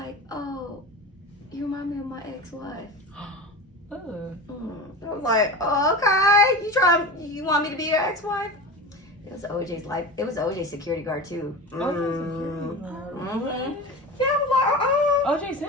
"Oh, you remind me of my ex-wife." I was like, "Oh, okay. You want me to be your ex-wife?" It was OJ's life. It was OJ's security guard too. Mhm. Yeah, I was like, "Oh, OJ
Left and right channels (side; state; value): both; normal; correlation 0.30